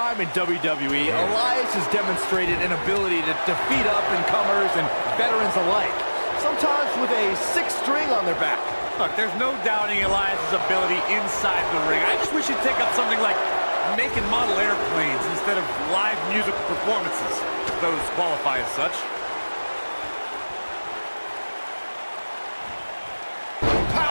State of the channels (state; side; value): inverted; both; correlation -1.00